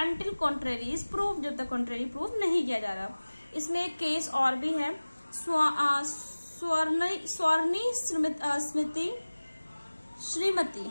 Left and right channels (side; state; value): both; inverted; correlation -1.00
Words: until contrary is proved, जब तक contrary proof नहीं किया जा रहा। इसमें एक केस और भी है, स्वर्णी श्रीमती